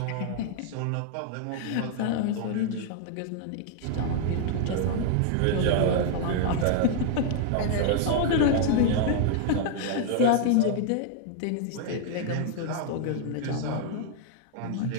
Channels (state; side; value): different; both; correlation 0.00